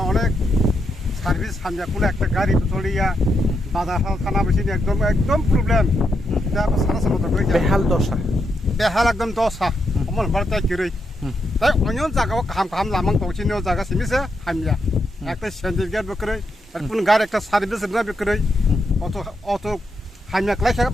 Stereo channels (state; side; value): normal; both; correlation 0.82